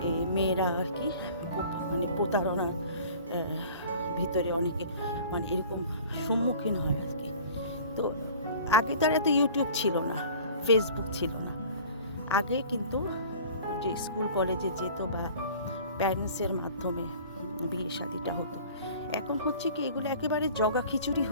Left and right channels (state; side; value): inverted; both; correlation -0.45